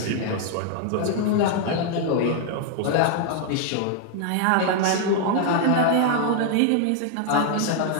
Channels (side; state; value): both; different; correlation 0.00